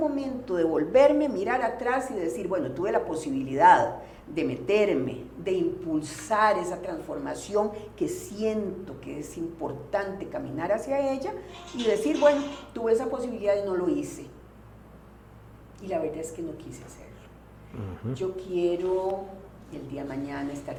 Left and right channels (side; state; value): both; identical; correlation 1.00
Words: devolverme, mirar atrás y decir, bueno, tuve la posibilidad de meterme, de impulsar esa transformación que siento que es importante caminar hacia ella y decir, bueno, tuve esa posibilidad y no lo hice. Y la verdad es que no quise hacerlo. Yo quiero el día de mañana